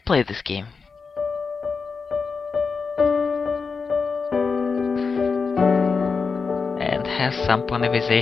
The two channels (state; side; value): quieter; right; 5.0 dB